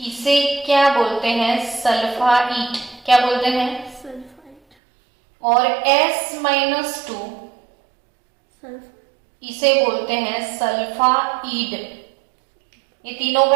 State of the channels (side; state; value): left; drops out; at 4.6 s